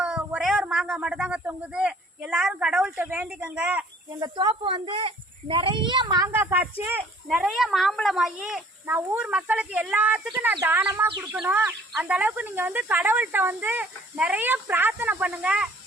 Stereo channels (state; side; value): normal; both; correlation 0.56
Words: ஒரே ஒரு மாங்காய் மட்டும்தாங்க தொங்குது. எல்லாரும் கடவுள்கிட்ட வேண்டிக்கங்க. எங்கள் தோப்பு வந்து நிறைய மாங்காய் காய்ச்சி நிறைய மாம்பழம் ஆகி நான் ஊர் மக்களுக்கு எல்லாத்துக்கும் நான் தானமாக கொடுக்கணும். அந்த அளவுக்கு நீங்கள் வந்து கடவுள்கிட்ட வந்து நிறைய பிரார்த்தனை பண்ணுங்க.